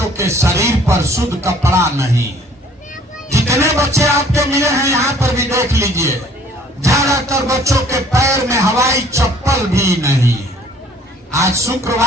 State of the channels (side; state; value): both; normal; correlation 0.56